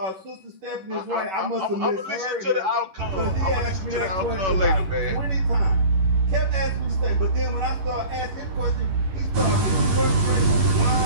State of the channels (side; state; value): left; late; 11 ms